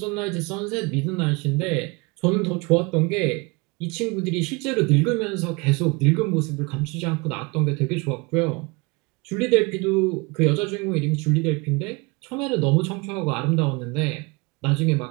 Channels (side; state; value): left; quieter; 27.1 dB